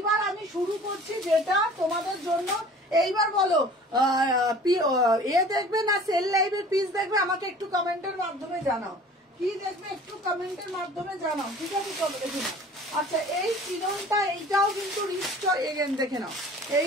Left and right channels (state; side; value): normal; both; correlation 0.46